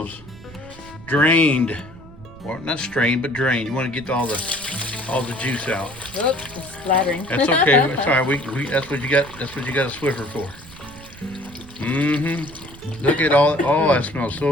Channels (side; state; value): right; noise; rumble, 19 dB below the sound